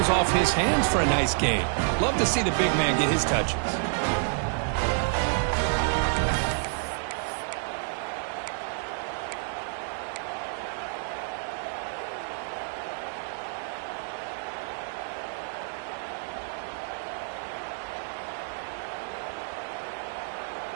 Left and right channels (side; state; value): left; silent; digital silence